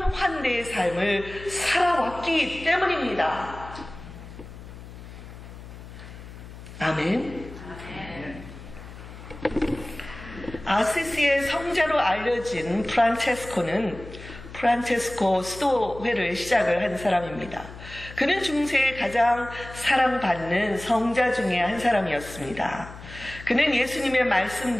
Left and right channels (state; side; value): noise; left; hum, 15 dB below the sound